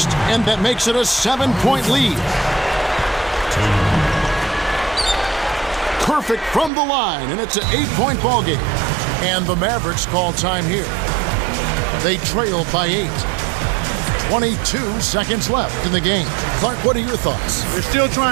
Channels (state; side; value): drops out; left; at 6.7 s